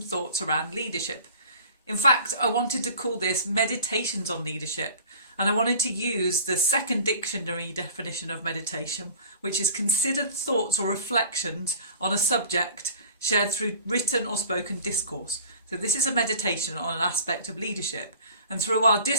thoughts around leadership. In fact, I wanted to call this Meditations on Leadership, and I wanted to use the second dictionary definition of meditation, which is considered thoughts or reflections on a subject shared through written or spoken discourse. So this is a meditation on an aspect of leadership. And through our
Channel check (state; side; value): inverted; both; correlation -0.43